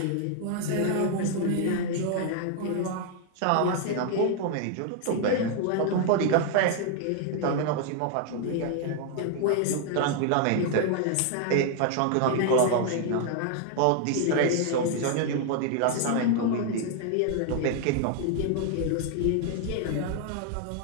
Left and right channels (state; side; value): different; both; correlation 0.00